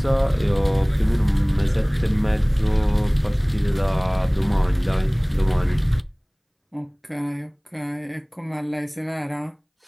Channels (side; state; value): both; identical; correlation 1.00